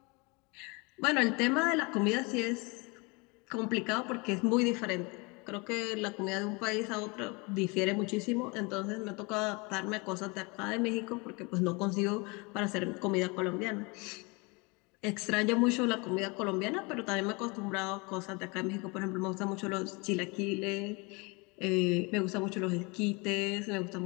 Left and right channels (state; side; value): quieter; right; 28.5 dB